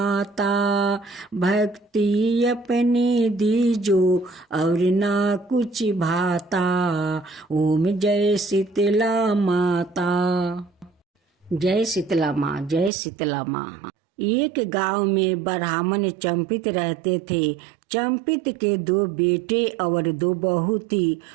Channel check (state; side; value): drops out; left; at 12.9 s